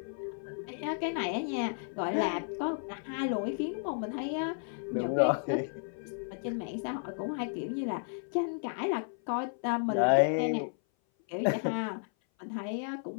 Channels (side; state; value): right; silent; 56 dB below the other